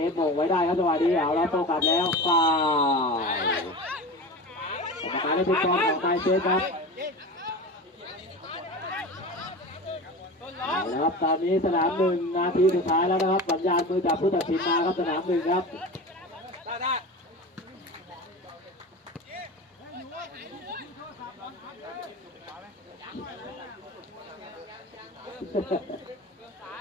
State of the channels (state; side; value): normal; both; correlation 0.30